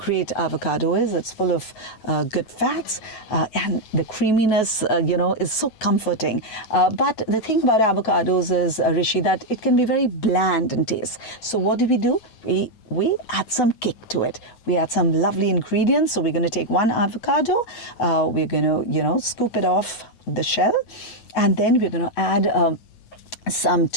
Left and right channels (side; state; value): right; late; 9.3 ms